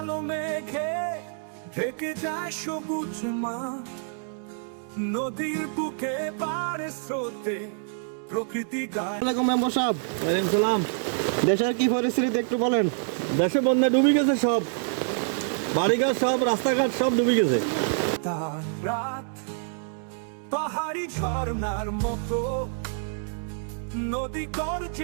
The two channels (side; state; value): left; silent; digital silence